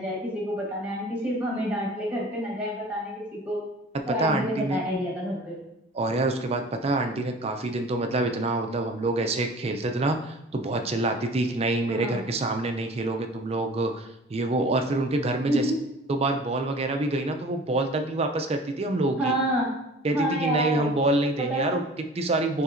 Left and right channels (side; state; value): both; normal; correlation 0.44